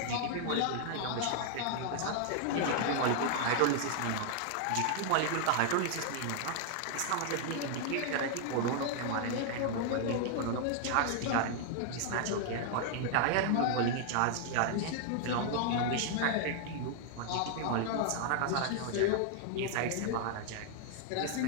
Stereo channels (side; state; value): both; different; correlation 0.00